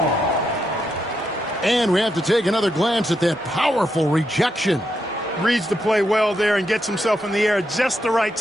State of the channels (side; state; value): both; normal; correlation 0.82